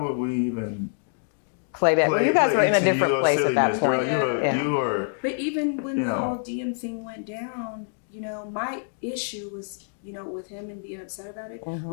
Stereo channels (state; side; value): silent; right; digital silence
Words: we even play that? You guys were in a different place silliness, at that point. girl. You were. But even when the whole DM thing went down, my issue was, with him and being upset about it,